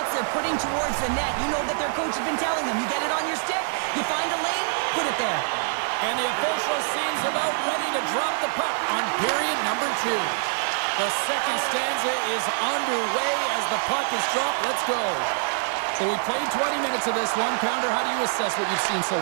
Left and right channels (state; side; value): silent; left; digital silence